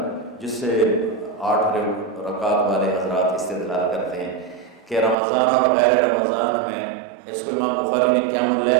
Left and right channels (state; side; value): drops out; left; at 5.2 s